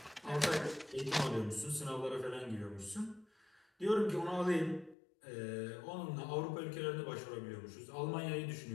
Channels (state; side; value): drops out; right; at 5.0 s